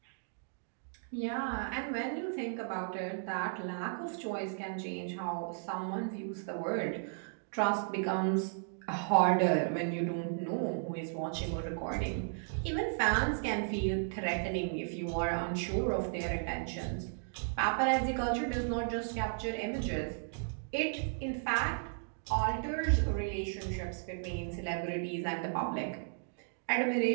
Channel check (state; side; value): silent; left; digital silence